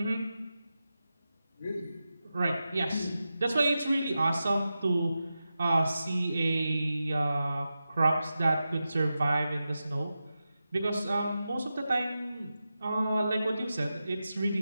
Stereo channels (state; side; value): inverted; both; correlation -0.92